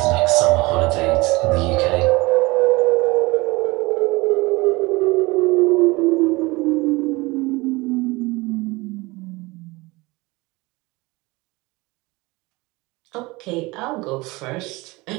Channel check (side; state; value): left; quieter; 23.0 dB